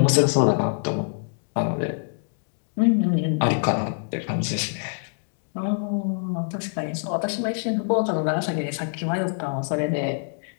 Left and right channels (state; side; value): silent; right; digital silence